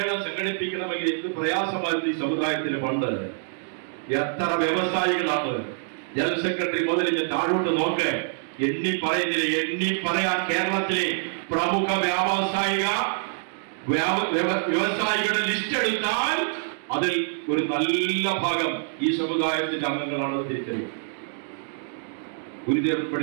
സംഘടിപ്പിക്കണമെങ്കിൽ? എന്ത് പ്രയാസമായിരുന്നു ഈ സമുദായത്തിന് പണ്ട്. എത്ര വ്യവസായികളാണ്. ജനറൽ സെക്രട്ടറി മുതൽ ഞാൻ താഴോട്ട് നോക്ക്, എണ്ണി പറയാൻ കേരളത്തിലെ പ്രമുഖ വ്യവസായികളുടെ ലിസ്റ്റ് എടുത്താൽ അതിൽ ഒരു നല്ല ഭാഗം ഈ സമുദായത്തിന്റെ അംഗങ്ങളാണ് തിരിച്ചറിയുക. ഗുരുദേവൻ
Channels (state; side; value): silent; left; digital silence